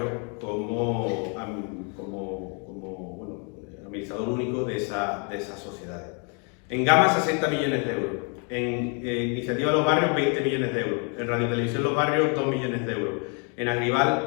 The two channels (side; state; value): right; quieter; 37.1 dB